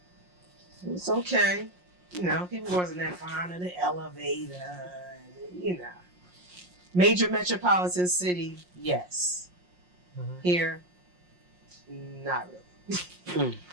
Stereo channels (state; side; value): late; left; 5.6 ms